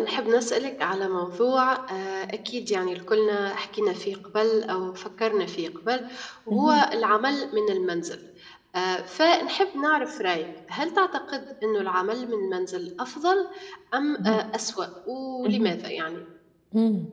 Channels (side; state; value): both; identical; correlation 1.00